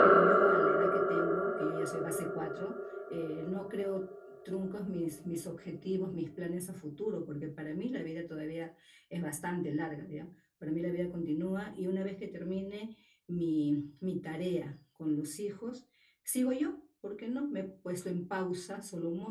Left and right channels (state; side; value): identical; both; correlation 1.00